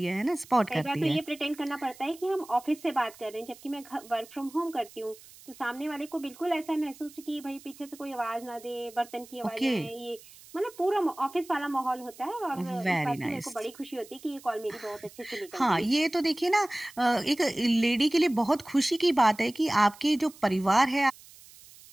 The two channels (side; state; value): right; noise; hiss, 21 dB below the sound